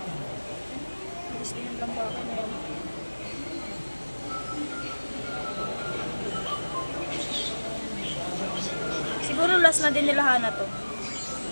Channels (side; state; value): both; inverted; correlation -1.00